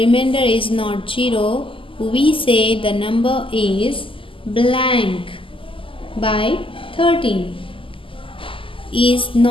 is not 0, we say the number is blank by 13, is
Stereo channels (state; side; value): late; right; 0.25 ms